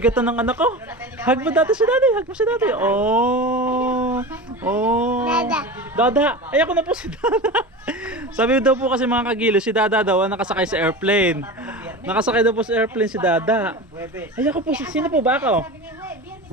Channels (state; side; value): normal; both; correlation 0.29